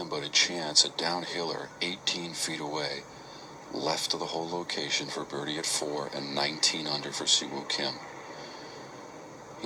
but a chance, a downhiller 18 feet away, left of the whole location for birdie at 4 and 19 under for Siwoo Kim.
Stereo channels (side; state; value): both; identical; correlation 1.00